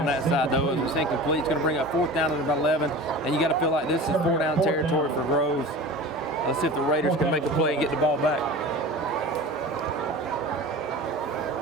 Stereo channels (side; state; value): both; normal; correlation 0.35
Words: that side though. It was incomplete. It's going to bring up 4th down at about 11, and you got to feel like this is 4 down territory for Groves. Let's see if the Raiders can make a play and get the ball back.